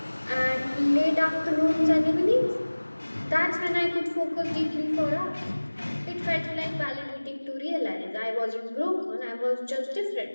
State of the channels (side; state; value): both; inverted; correlation -1.00